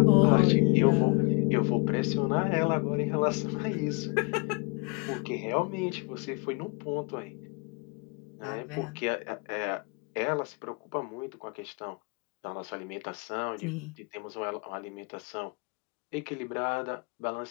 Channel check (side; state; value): right; quieter; 31.0 dB